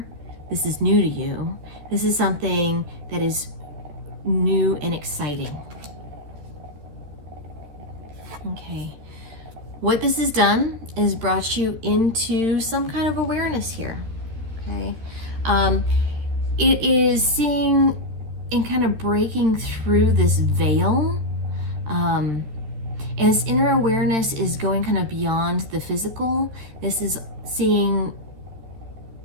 this is new to you. This is something that is new and exciting. Okay. What this has done is brought you into some kind of awareness here. Okay. It is seeing and kind of breaking through this veil. And this inner awareness is going kind of beyond the physical. This is seeing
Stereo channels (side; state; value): left; late; 13 ms